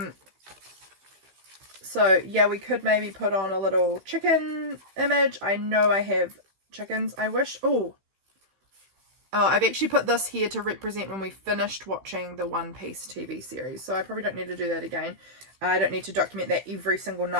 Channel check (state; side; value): late; left; 16 ms